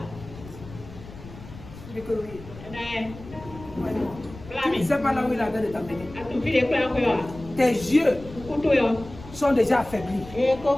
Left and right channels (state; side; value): noise; left; rumble, 16 dB below the sound